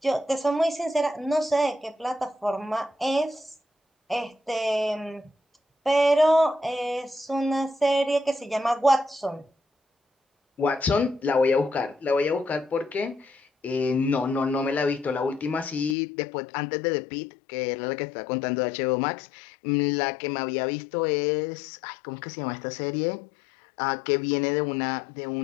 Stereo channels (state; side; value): drops out; right; at 16.0 s